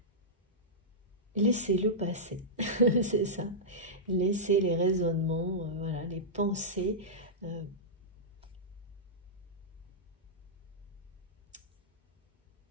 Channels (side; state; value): both; normal; correlation -0.12